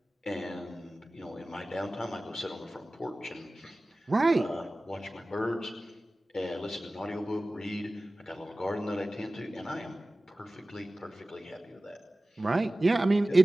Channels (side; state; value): both; normal; correlation 0.97